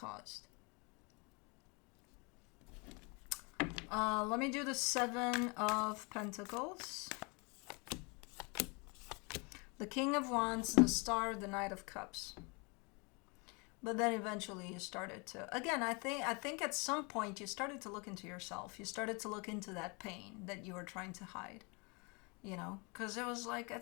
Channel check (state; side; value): quieter; right; 30.7 dB